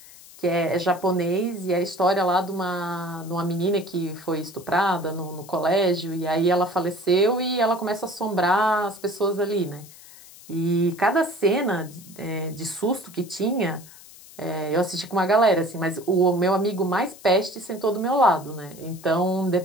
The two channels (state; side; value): noise; left; hiss, 20 dB below the sound